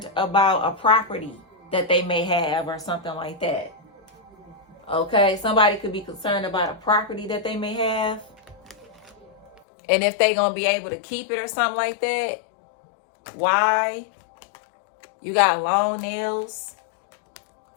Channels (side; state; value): right; drops out; at 9.6 s